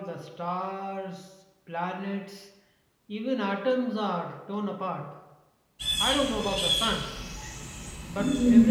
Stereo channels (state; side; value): identical; both; correlation 1.00